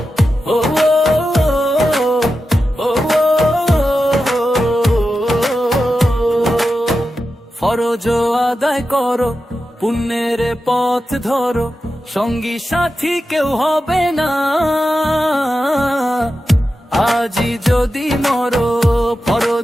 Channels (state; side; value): normal; both; correlation 0.91